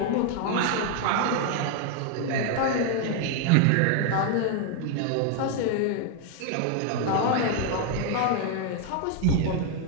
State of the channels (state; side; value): different; both; correlation 0.01